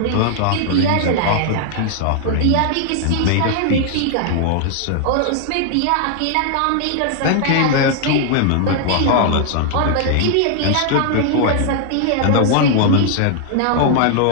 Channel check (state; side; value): different; both; correlation -0.01